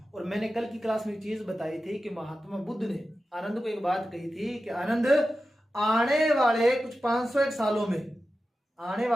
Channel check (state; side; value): normal; both; correlation 0.92